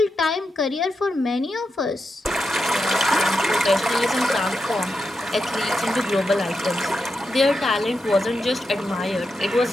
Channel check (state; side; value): normal; both; correlation 0.87